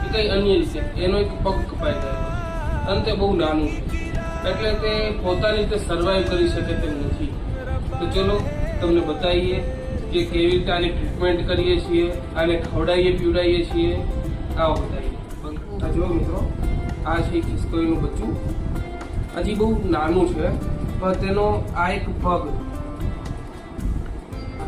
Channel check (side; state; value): both; identical; correlation 1.00